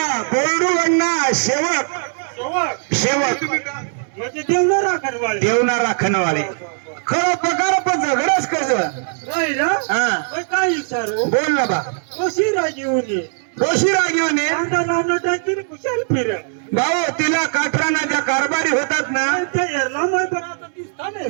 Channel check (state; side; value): silent; left; 63 dB below the other